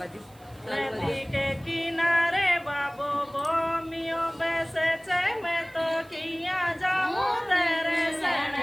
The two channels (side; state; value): right; noise; hiss, 28 dB below the sound